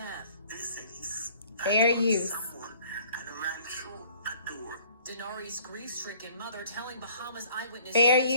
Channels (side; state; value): both; inverted; correlation -0.56